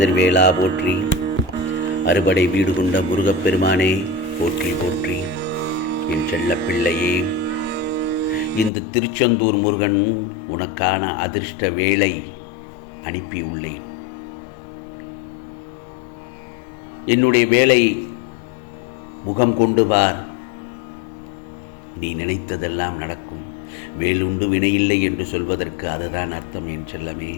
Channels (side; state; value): right; drops out; at 8.7 s